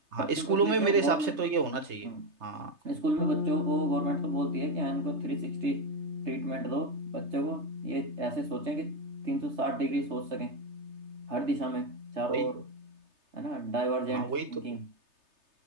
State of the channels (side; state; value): left; late; 3.3 ms